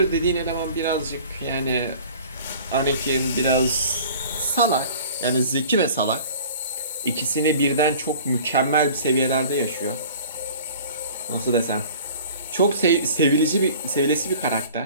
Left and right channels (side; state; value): both; inverted; correlation -0.45